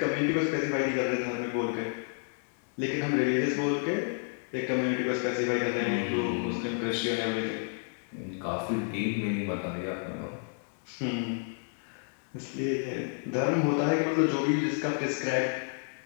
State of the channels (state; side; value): silent; right; 55 dB below the other